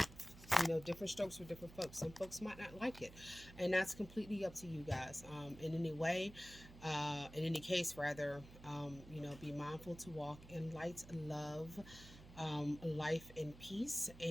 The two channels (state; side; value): noise; right; hum, 17 dB below the sound